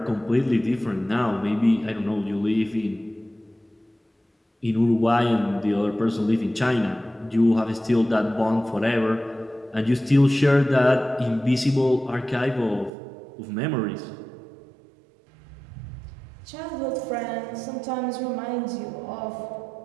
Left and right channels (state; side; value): drops out; left; at 12.9 s